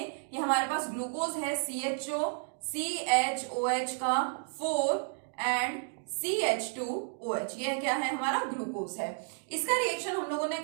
कि हमारे पास ग्लूकोज है CHO CHOH का 4 एंड CH2OH, ये क्या है? हमारा ग्लूकोज है। इसका रिएक्शन हम लोगों ने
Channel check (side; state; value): left; silent; 56 dB below the other